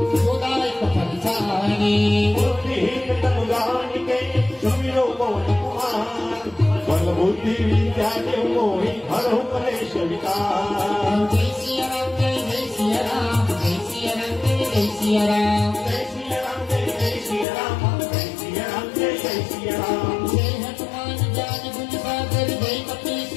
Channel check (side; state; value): right; drops out; at 17.4 s